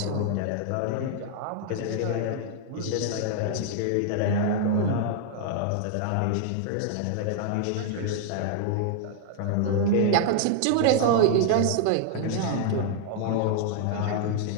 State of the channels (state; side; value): different; both; correlation -0.01